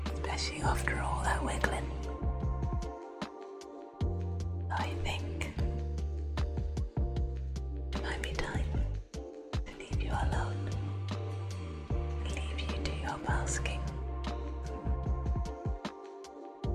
Especially after all that wiggling. I think it might be time to leave you alone. Leave you to your basking.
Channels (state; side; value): identical; both; correlation 1.00